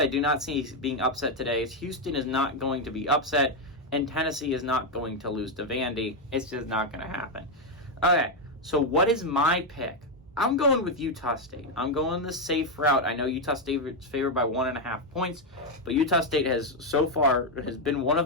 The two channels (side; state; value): both; normal; correlation 0.03